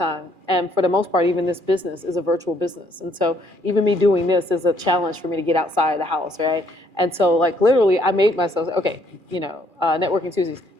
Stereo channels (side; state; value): left; late; 2.4 ms